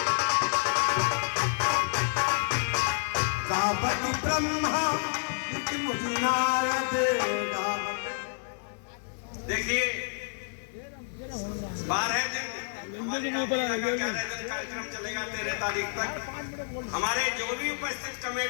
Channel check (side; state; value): right; silent; 56 dB below the other